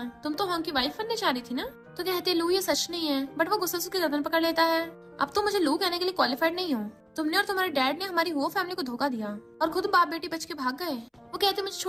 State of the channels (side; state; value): both; identical; correlation 1.00